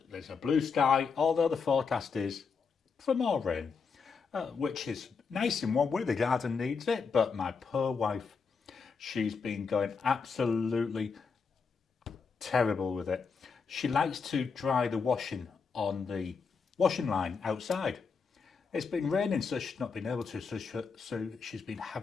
There's a blue sky, although the forecast is for more rain, which is nice in one way. The garden needs it, but my poor wife, she's been going absolutely terrible with it. She likes to dry the washing on the washing line outside. It's been raining, so she's not been able to, so she's been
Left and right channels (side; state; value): right; quieter; 5.4 dB